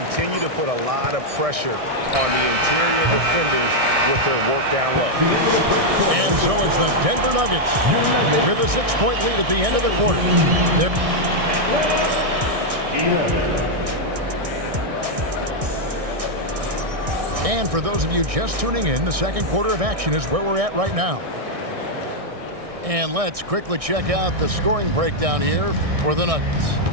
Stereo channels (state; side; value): late; left; 1.6 ms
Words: to put a lot of pressure on the interior defenders with their work down low. And so it's the Denver Nuggets with a 6-point lead at the end of the quarter. And for those of you just tuning in, the second quarter of action is where we're at right now. And let's quickly check out the scoring breakdown here for the Nuggets.